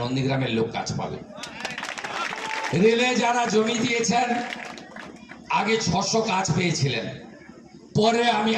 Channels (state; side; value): identical; both; correlation 1.00